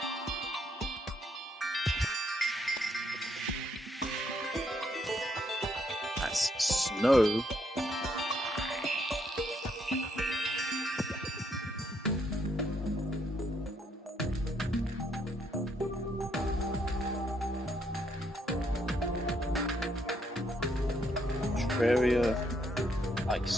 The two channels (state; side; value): normal; both; correlation 0.73